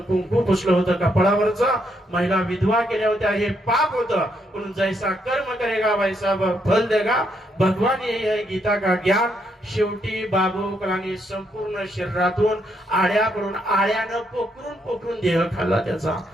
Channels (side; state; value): both; normal; correlation 0.76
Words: पुसलं होतं, कपाळावरचं, महिला विधवा केल्या होत्या, हे पाप होतं. म्हणून जैसा कर्म करेगा वैसा फल देगा, भगवान यही है गीता का ज्ञान. शेवटी बाबू कलांनी संपूर्ण शरीरातून आळ्या पडून, आळ्यानं पोखरून देह खाल्ला त्याचा.